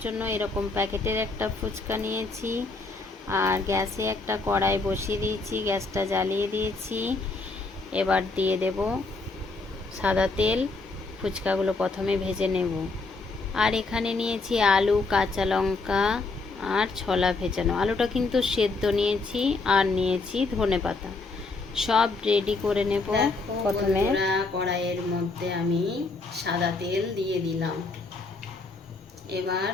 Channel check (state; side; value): quieter; right; 3.6 dB